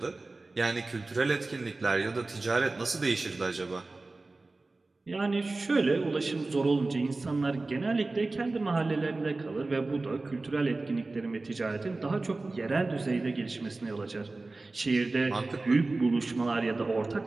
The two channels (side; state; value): left; quieter; 3.3 dB